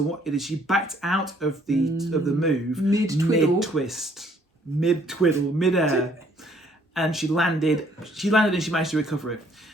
backed out of the move mid-air, and she landed and she managed to recover it.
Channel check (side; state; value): both; normal; correlation 0.63